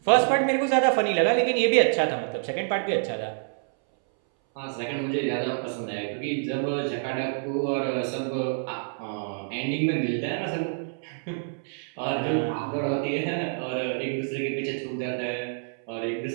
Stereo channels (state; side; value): silent; left; 60 dB below the other